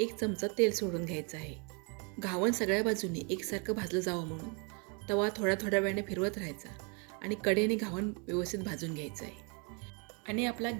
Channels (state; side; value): quieter; left; 34.4 dB